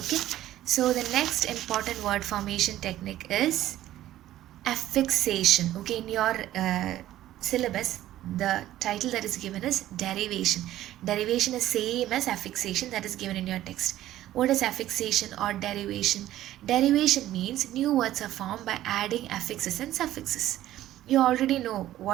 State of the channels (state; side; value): quieter; left; 13.8 dB